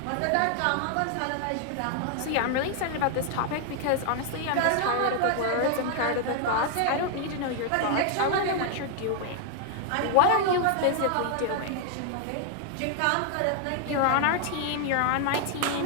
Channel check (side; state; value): both; different; correlation 0.00